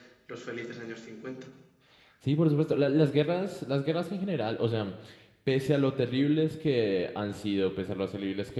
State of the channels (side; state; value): both; identical; correlation 1.00